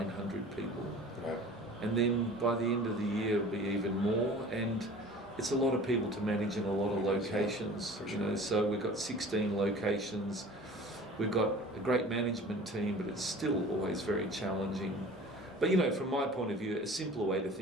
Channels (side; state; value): both; normal; correlation 0.43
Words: people. And then by the end of the year it'll be even more. And it's a lot of people to manage in a lot of locations. So we've got 16 locations. We've got a great management team, but it's still always very challenging. But from my point of view, a simpler way to